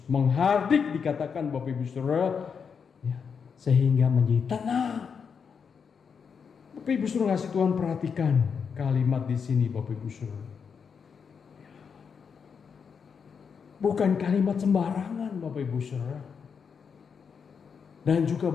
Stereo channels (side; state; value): right; quieter; 6.3 dB